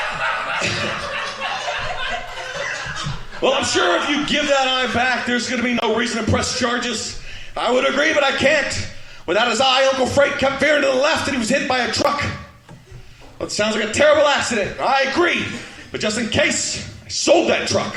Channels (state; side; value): identical; both; correlation 1.00